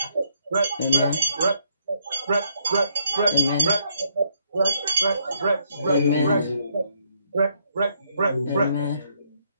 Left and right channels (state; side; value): inverted; both; correlation -0.73